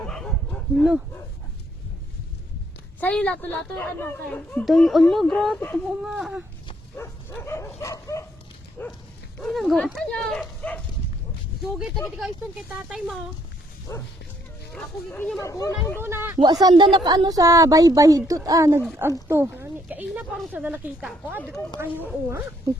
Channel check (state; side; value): normal; both; correlation 0.69